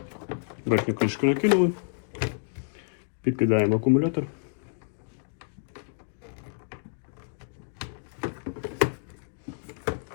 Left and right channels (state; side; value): silent; right; digital silence